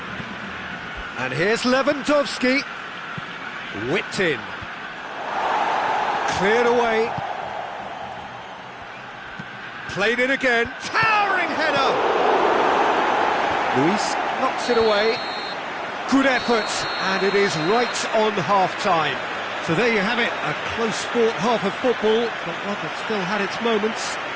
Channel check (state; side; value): identical; both; correlation 1.00